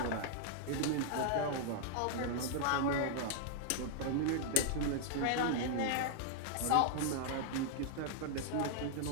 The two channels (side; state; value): both; different; correlation -0.01